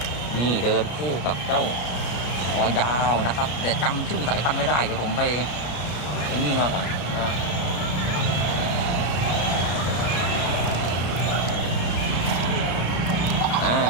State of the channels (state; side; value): late; right; 34 ms